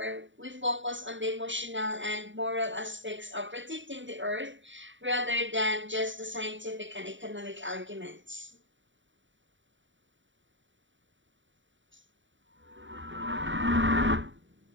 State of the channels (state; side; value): late; left; 0.55 ms